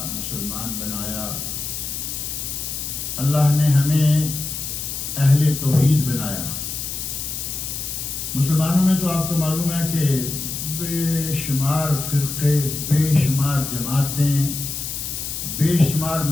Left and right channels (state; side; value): noise; left; hiss, 5 dB below the sound